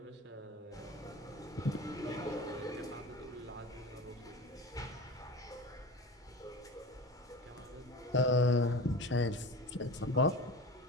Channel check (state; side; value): normal; both; correlation 0.34